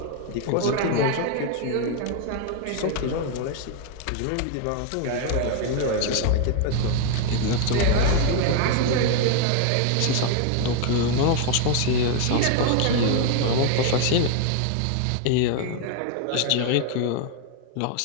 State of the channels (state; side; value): different; both; correlation 0.00